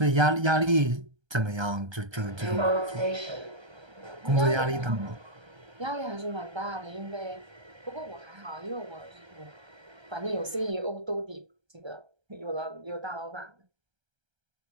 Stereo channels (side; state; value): left; late; 1.3 ms